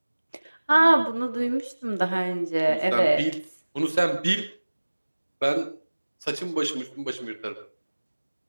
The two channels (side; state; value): both; inverted; correlation -1.00